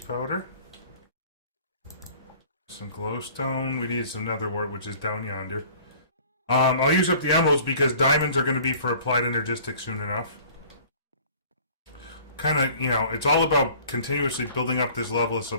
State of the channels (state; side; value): inverted; both; correlation -0.50